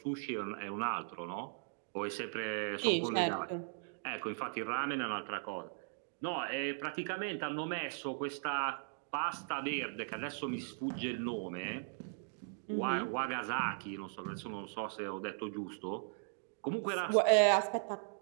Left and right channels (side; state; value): left; silent; digital silence